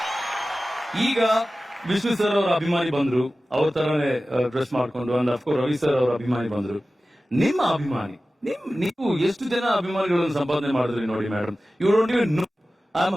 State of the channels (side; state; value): both; normal; correlation 0.96